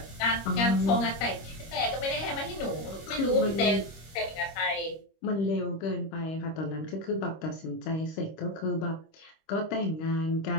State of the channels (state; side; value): late; right; 25 ms